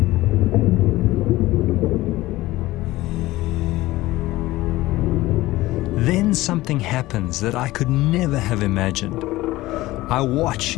Then something happens that I could never have imagined. I watch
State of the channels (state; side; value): quieter; right; 17.8 dB